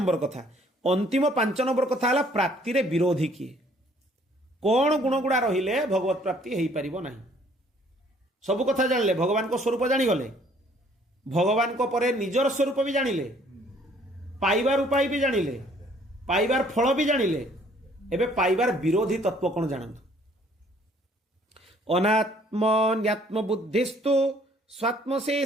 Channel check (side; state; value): both; normal; correlation 0.60